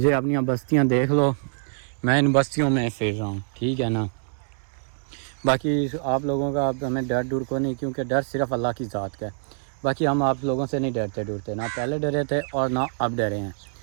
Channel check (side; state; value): left; silent; digital silence